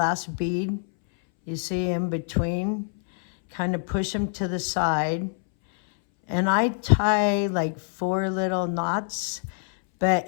bead, you see in between, kind of push them to the side. And I tie like 4 little knots,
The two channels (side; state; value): right; silent; 61 dB below the other